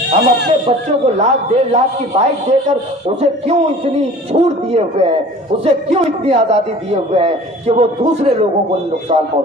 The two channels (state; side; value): normal; both; correlation 0.44